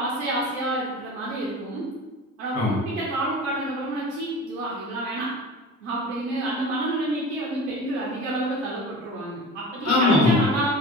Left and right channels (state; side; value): normal; both; correlation 0.35